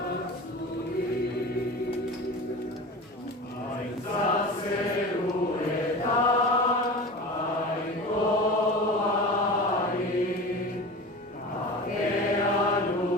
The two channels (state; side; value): normal; both; correlation 0.33